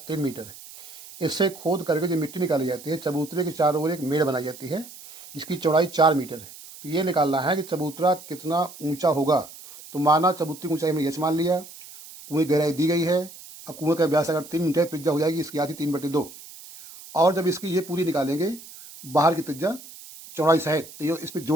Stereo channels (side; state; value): right; noise; hiss, 17 dB below the sound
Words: 3 मीटर है, इससे खोद करके जो मिट्टी निकाली जाती है, चबूतरे के चारों ओर एक मेड़ बनाई जाती है जिसकी चौड़ाई 4 मीटर है। तो ये निकालना है कि चबूतरा कितना ऊंचा होगा। तो माना चबूतरे की ऊंचाई में ये मान लिया, कुएं की गहराई दी गई है। अब कुएं का व्यास अगर 3 मीटर त्रिज्या हो जाएगी इसकी आधी 3/2। और जब इसकी ये पूरी निकालेंगे बाहर की त्रिज्या चौड़ाई सहित, तो ये इस पर